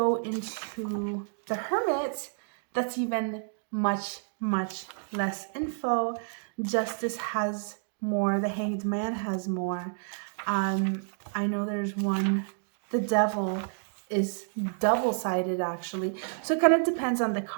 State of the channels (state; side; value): silent; left; digital silence